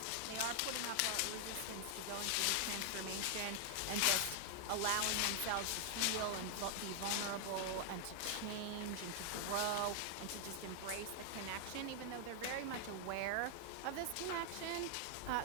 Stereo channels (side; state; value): both; different; correlation 0.00